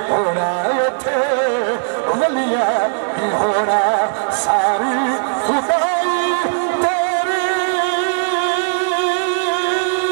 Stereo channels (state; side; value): silent; left; digital silence